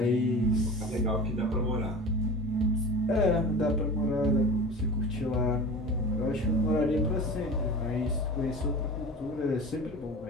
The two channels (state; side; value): normal; both; correlation 0.35